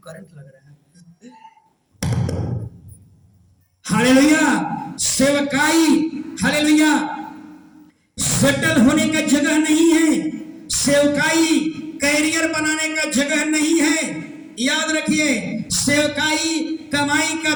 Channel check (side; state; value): both; identical; correlation 1.00